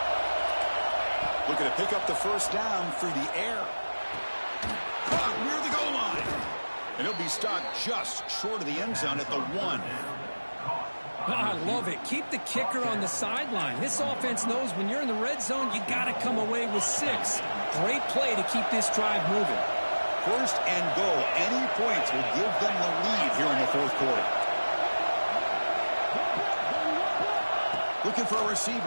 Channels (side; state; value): both; inverted; correlation -1.00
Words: Looking to pick up the first down through the air. Caught near the goal line. And he'll be stopped just short of the end zone at the 1. I love it. Keep the kicker on the sideline. This offense knows when you're in the red zone, you got to come away with 6. Great play to keep this drive moving. 1st and goal. Any points will give them the lead here in the 4th quarter. Looking for a